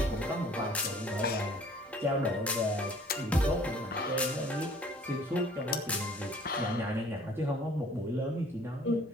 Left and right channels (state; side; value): normal; both; correlation 0.54